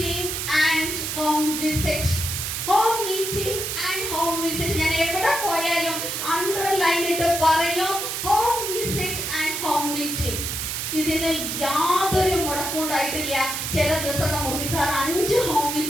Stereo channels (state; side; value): noise; right; hiss, 3 dB below the sound